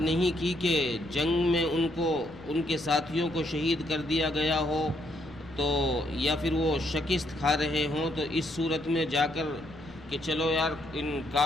کی کہ جنگ میں ان کے ساتھیوں کو شہید کر دیا گیا ہو تو یا پھر وہ شکست کھا رہے ہوں تو اس صورت میں جا کر کہ چلو یار ان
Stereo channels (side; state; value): left; noise; rumble, 21 dB below the sound